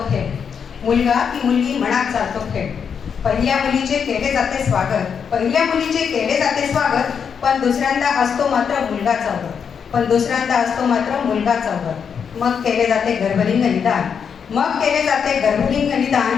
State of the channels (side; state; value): right; quieter; 6.9 dB